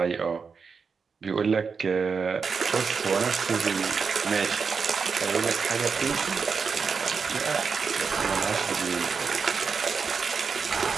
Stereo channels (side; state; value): left; quieter; 5.5 dB